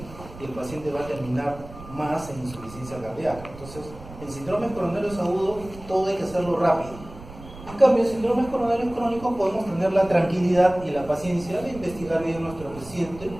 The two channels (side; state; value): right; noise; rumble, 16 dB below the sound